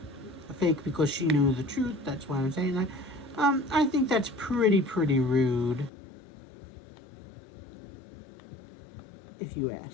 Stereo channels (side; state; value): right; drops out; at 5.9 s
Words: fake because she knew the truth. That's why I'm saying that. I think that's pretty rude, if you